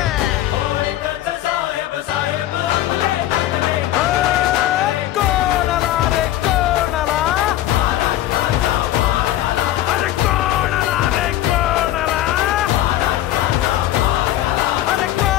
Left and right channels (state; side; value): quieter; right; 13.9 dB